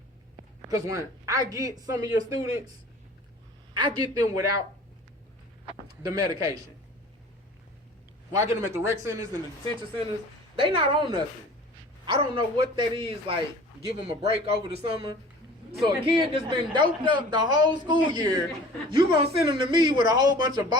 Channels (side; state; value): both; normal; correlation 0.45